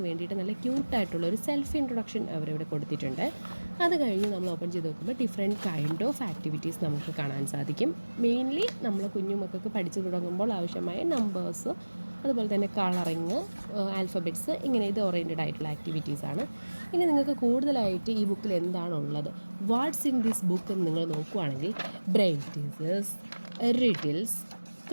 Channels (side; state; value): both; inverted; correlation -1.00